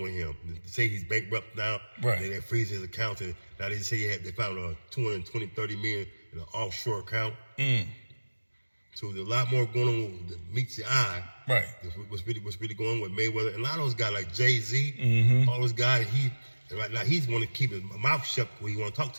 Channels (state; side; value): inverted; both; correlation -1.00